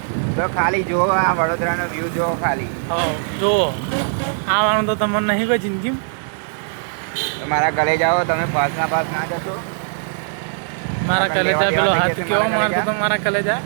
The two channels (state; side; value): silent; left; digital silence